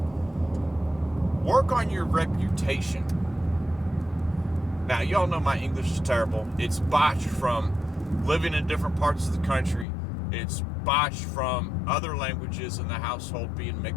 Work on your reputation. Now, y'all know my English is terrible. It's botched from living in different parts of the country. It's botched from other languages in the household being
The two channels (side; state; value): right; drops out; at 9.9 s